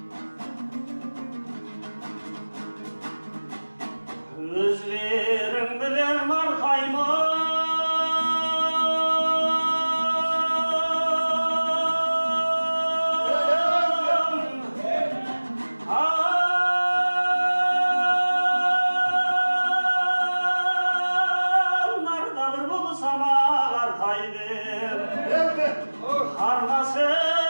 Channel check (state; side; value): inverted; both; correlation -1.00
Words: Özlerim bilen markayma nardadır bulsam ağartaydım Harnası